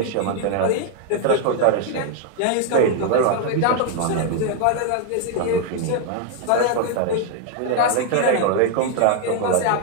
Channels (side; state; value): both; different; correlation 0.00